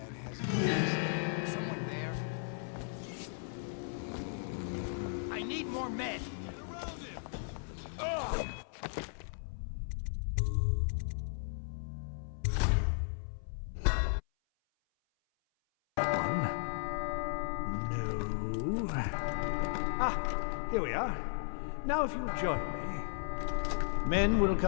has keys. Someone there? I need more men! Get around him! Ugh! Here we are. Now if you'll join me. Men will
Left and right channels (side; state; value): right; silent; 54 dB below the other